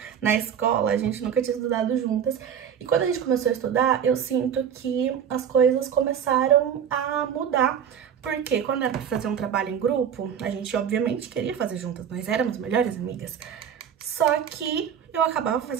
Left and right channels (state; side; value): quieter; left; 8.5 dB